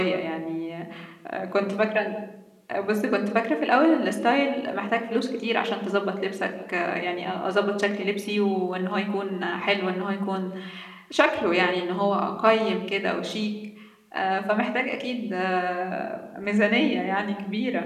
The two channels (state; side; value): identical; both; correlation 1.00